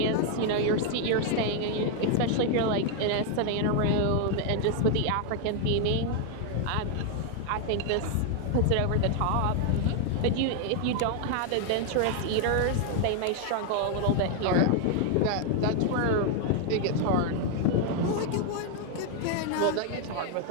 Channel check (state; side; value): different; both; correlation 0.00